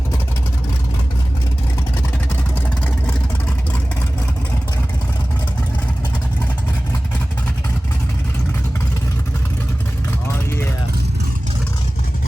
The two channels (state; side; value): normal; both; correlation 0.97